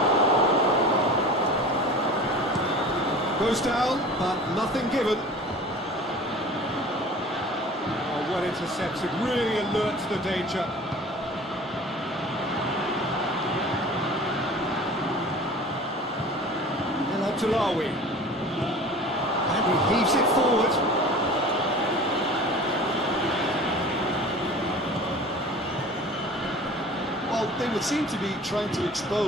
Goes down, but nothing given. Oh, well intercepted, really alert to the danger. El Abdullawi. And he heaves it forward. They would seem to be trying to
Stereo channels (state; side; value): normal; both; correlation 0.40